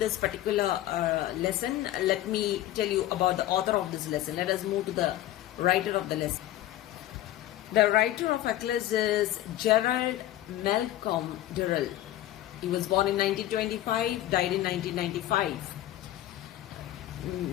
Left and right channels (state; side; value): quieter; right; 14.1 dB